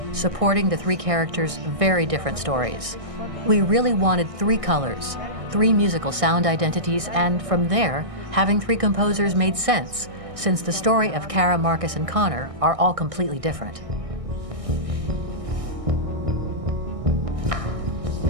supporting the 3 characters' very different stories. We really wanted 3 colors, 3 musical sound identities, and from there, having 3 composers made sense, since the story of Kara, Marcus, and Connor are all completely different.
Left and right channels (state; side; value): late; left; 1.6 ms